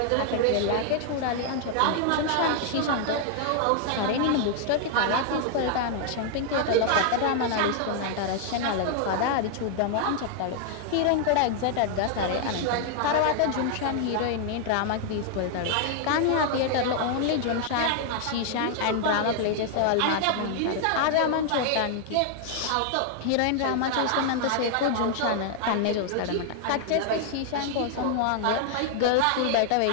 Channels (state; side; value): different; both; correlation 0.00